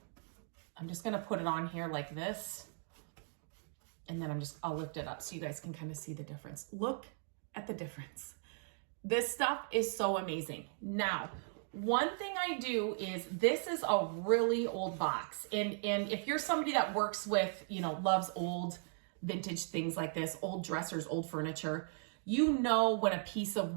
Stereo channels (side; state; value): left; silent; 53 dB below the other